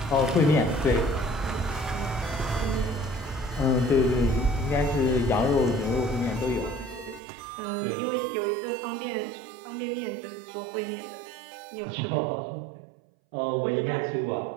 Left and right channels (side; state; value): left; drops out; at 7.2 s